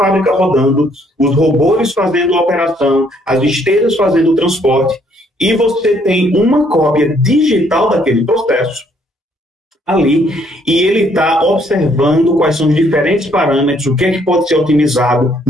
rodando, os robôs fazendo a operação, as esteiras fazendo o transporte, e você tem uma cópia digital daquele processo ali, e ele está observando quais são os diferentes parâmetros, o que é que pode ser otimizado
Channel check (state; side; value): normal; both; correlation 0.67